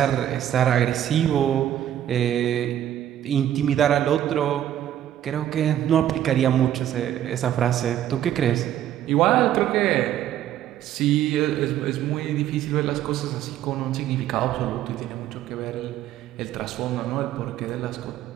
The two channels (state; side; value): quieter; left; 11.4 dB